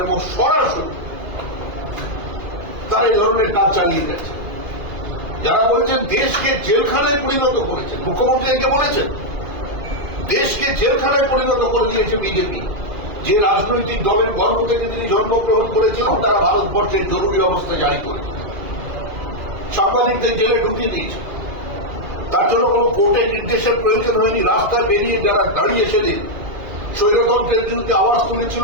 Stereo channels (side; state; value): left; late; 2.4 ms